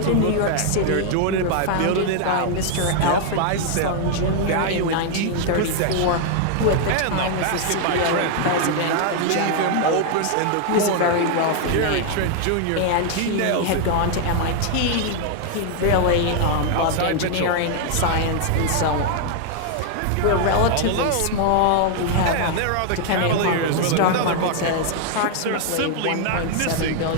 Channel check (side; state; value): both; different; correlation 0.00